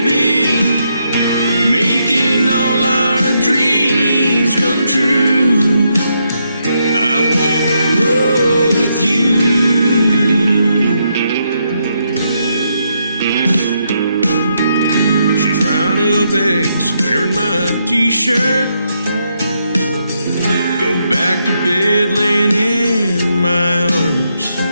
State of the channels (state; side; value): inverted; both; correlation -0.79